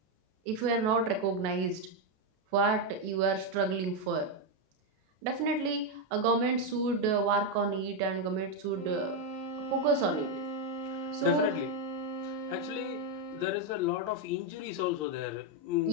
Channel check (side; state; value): left; late; 33 ms